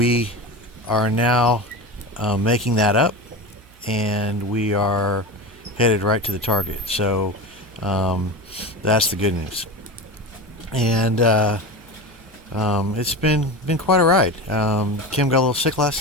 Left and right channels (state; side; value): noise; right; hum, 26 dB below the sound